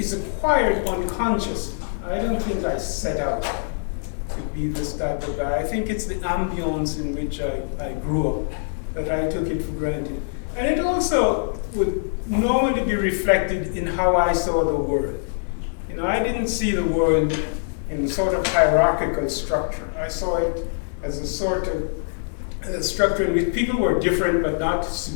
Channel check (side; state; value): right; silent; digital silence